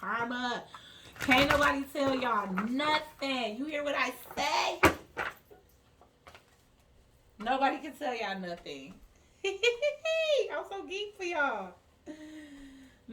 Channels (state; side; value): identical; both; correlation 1.00